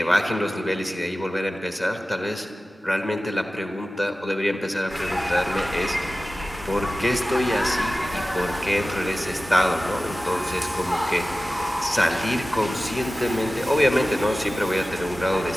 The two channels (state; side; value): normal; both; correlation 0.96